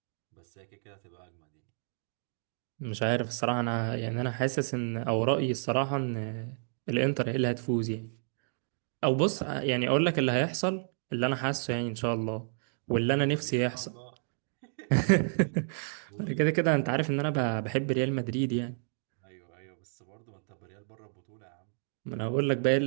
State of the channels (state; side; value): silent; left; digital silence